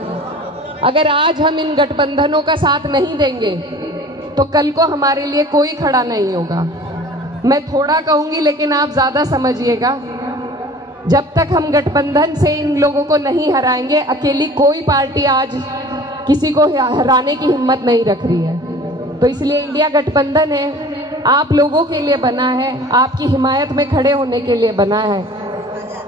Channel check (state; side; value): normal; both; correlation 0.45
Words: अगर आज हम इन गठबंधनों का साथ नहीं देंगे तो कल को हमारे लिए कोई खड़ा नहीं होगा। मैं थोड़ा कहूंगी लेकिन आप ज़्यादा समझिएगा। जब तक हम गठबंधन से इन लोगों को नहीं हराएंगे, अकेली कोई पार्टी आज किसी को हराने की हिम्मत नहीं रख रही है। तो इसलिए इंडिया गठबंधन है, आप लोगों के लिए बना है, आपकी हिमायत में खड़े होने के लिए बना है।